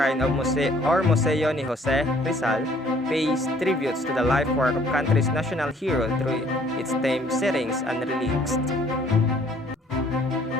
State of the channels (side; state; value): both; normal; correlation 0.60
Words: of Museo ni Jose Rizal pays tributes to the life work of country's national hero through its themed settings and relics.